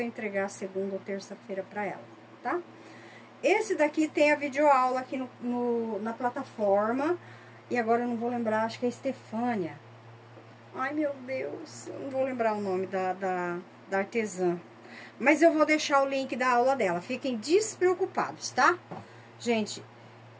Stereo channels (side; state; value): both; identical; correlation 1.00